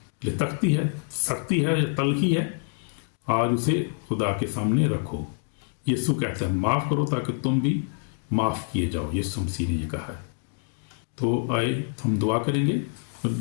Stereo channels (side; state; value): right; silent; 57 dB below the other